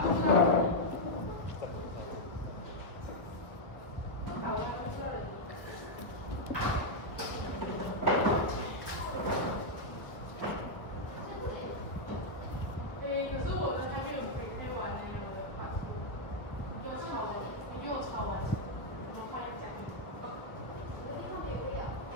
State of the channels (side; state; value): right; late; 1.1 ms